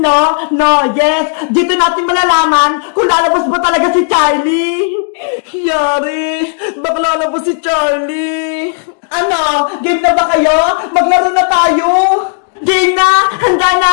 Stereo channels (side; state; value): right; silent; digital silence